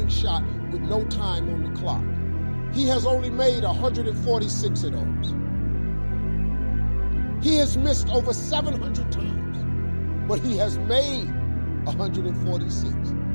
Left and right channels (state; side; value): inverted; both; correlation -1.00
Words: shot with no time on the clock. He has only made 146 of those. He has missed over 700 times, but he has made 146.